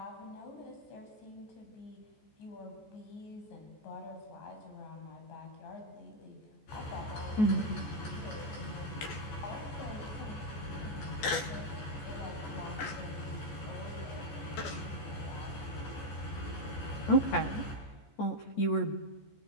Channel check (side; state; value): right; late; 14 ms